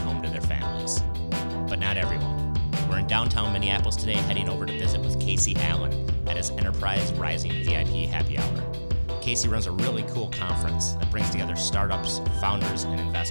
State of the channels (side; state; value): both; inverted; correlation -1.00